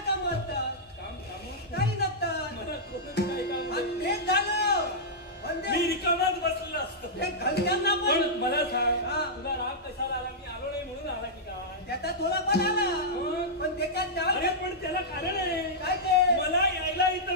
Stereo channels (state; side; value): normal; both; correlation -0.11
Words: काम असतात? काम काही नसतात. मला कोणतं काही काम तेच झालं. मी रिकामाच बसलेला असतो. घरच्यांना पण मला सांग, तुला राग कशाला आला? मी आलो नाही म्हणून आला की काय? त्याचा थोडा पण आला, पण त्याच्यात अरे पण त्याला कारण आहे. काय ते? मला यायला इथं